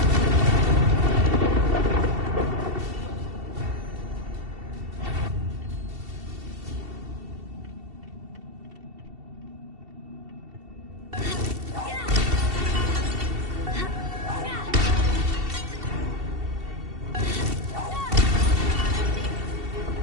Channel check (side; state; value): left; late; 2.7 ms